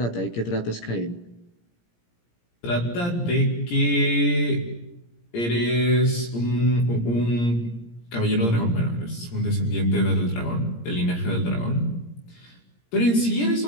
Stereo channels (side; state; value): right; late; 17 ms